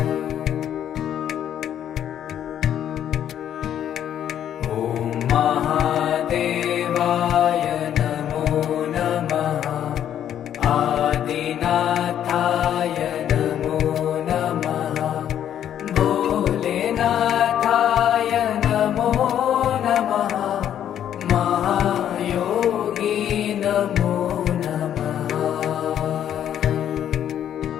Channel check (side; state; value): right; quieter; 10.2 dB